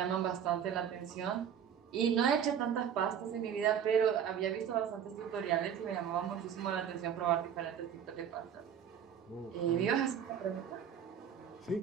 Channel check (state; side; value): quieter; left; 8.4 dB